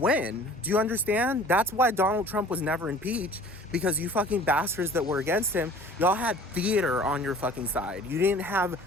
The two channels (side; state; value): both; normal; correlation 0.47